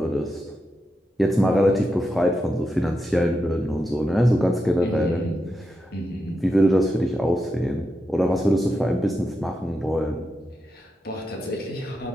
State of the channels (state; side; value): normal; both; correlation 0.87